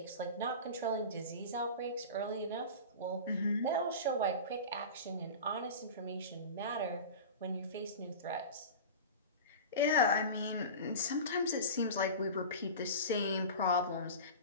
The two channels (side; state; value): both; inverted; correlation -0.31